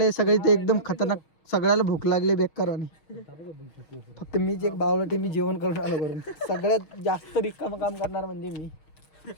सगळे ते एकदम खतरनाक. सगळ्याला भूक लागली बेकारवानी. फक्त मीच एक बावळटी. मी जेवण करून आलो करून. सगळ्यात जास्त रिकाम काम करणार म्हणजे मी.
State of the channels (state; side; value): late; right; 6.3 ms